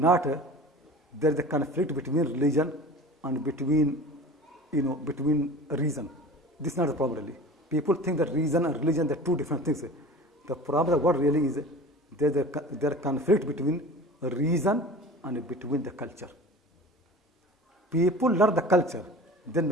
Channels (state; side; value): normal; both; correlation 0.38